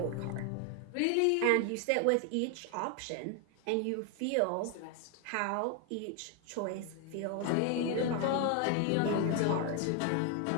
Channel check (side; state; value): both; different; correlation 0.00